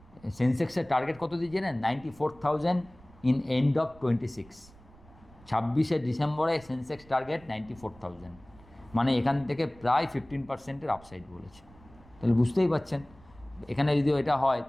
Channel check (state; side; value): noise; right; rumble, 24 dB below the sound